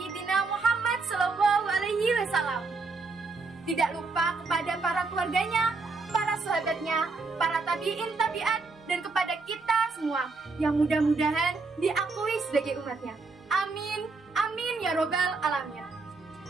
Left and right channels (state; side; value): quieter; left; 4.0 dB